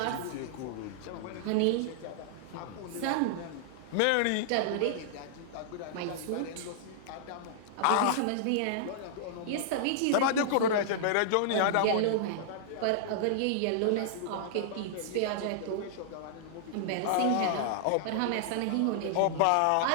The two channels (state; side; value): different; both; correlation -0.01